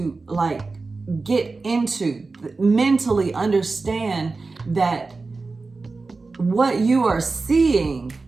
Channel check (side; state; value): left; quieter; 3.9 dB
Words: get into, mentally understand that what you are seeing